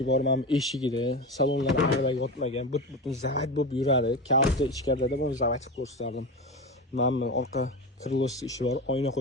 bor, mana eshigida, salonlar ag'dagi yotmagan, butun zavat bo'lib yuradi. Kalta ichkarida buni zavat qilib ko'rsatdim. Mana orqa krilosida ishi bor, oyna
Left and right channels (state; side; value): normal; both; correlation 0.23